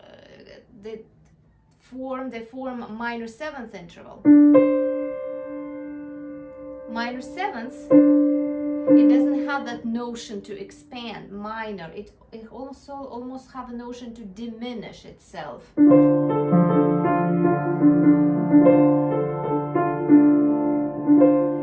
they form a minor seventh interval. Minor seventh, it doesn't have that notion to expand. Minor, it also almost have a notion to diminish itself.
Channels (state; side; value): identical; both; correlation 1.00